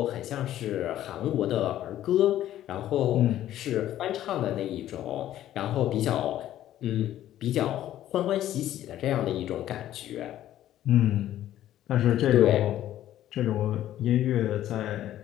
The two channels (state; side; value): quieter; right; 12.7 dB